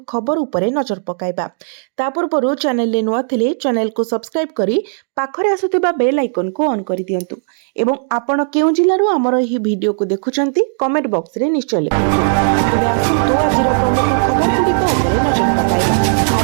खबर उपरे नजर पकाइबा। ता पूर्व चैनल नुआ थिले चैनल को सब्सक्राइब करी पाखरे आसुथिबा बेल आइकन को ऑन कर दियंतु एवं आपण केउ जिल्लारु हमर एही वीडियो को देखुचंती कमेंट बॉक्स रे निश्चय लिखंतु। तबे आसतु आज प्रमुख खबर गुड़िक उपरे नजर पकाइबा।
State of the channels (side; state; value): left; silent; digital silence